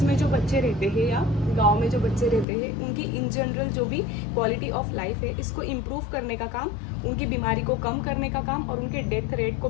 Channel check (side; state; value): right; drops out; at 2.5 s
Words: में जो बच्चे रहते हैं या गांव में जो बच्चे रहते हैं, उनकी इन जनरल जो भी क्वालिटी ऑफ लाइफ है इसको इम्प्रूव करने का काम, उनकी बीमारी को कम करने का काम और उनके डेथ रेट को